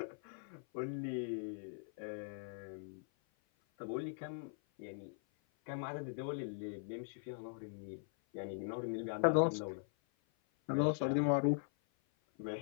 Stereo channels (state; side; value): silent; right; 50 dB below the other